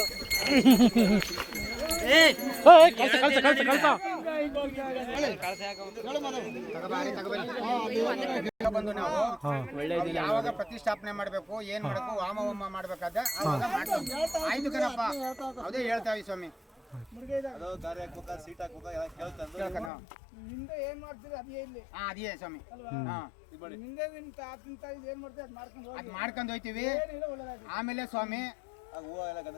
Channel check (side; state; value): right; drops out; at 19.9 s